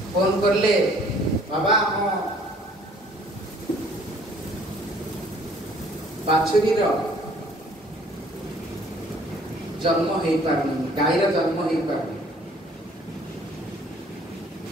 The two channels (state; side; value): normal; both; correlation 0.57